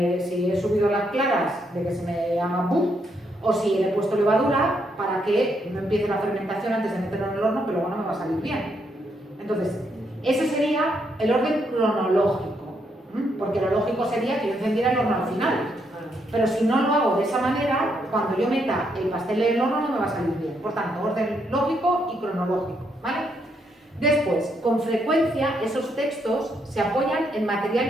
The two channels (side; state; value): both; normal; correlation 0.76